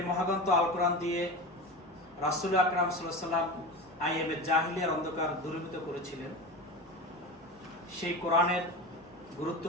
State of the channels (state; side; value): normal; both; correlation 0.28